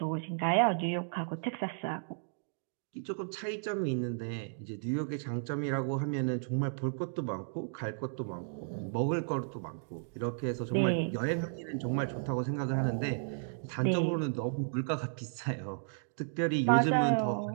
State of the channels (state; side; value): silent; left; digital silence